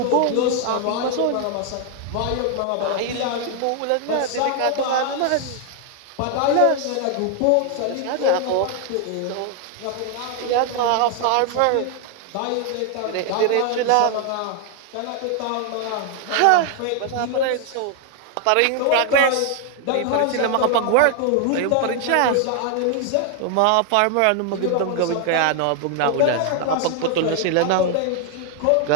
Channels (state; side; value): different; both; correlation 0.00